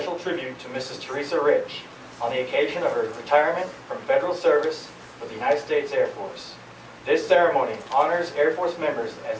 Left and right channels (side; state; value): both; identical; correlation 1.00